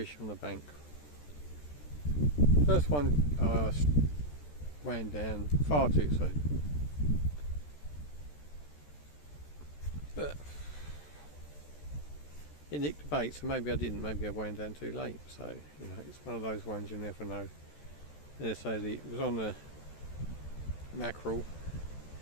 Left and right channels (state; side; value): late; right; 14 ms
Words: on the bank. First one wound down far too soon. But it nicked the bait, so maybe I didn't, maybe I wound down too late, so you know, it's one of those ones you never know. So it was on the mackerel.